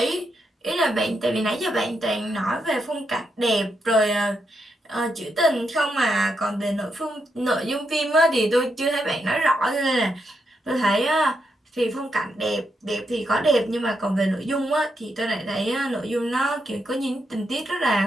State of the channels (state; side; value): normal; both; correlation 0.82